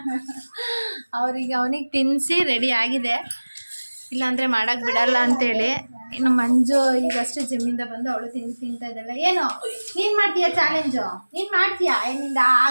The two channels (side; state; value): both; inverted; correlation -1.00